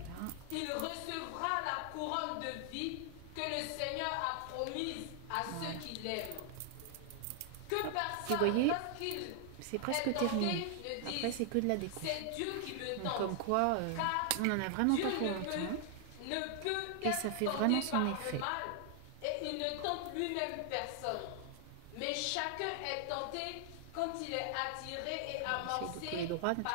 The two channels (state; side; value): different; both; correlation 0.00